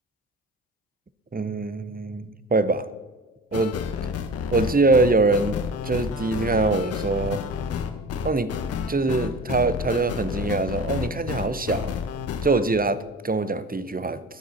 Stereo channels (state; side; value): normal; both; correlation 0.36